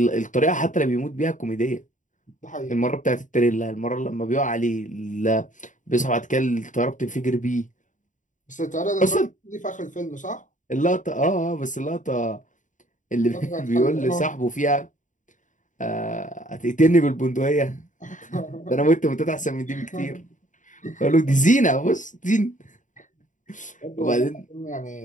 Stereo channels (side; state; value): right; late; 0.37 ms